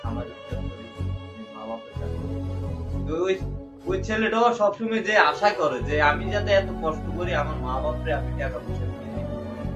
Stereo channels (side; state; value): both; identical; correlation 1.00